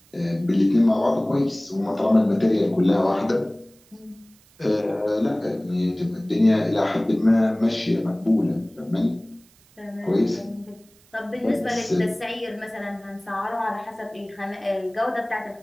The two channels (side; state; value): right; noise; hiss, 30 dB below the sound